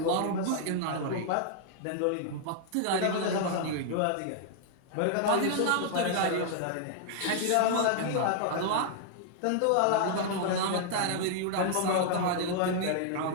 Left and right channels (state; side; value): different; both; correlation -0.01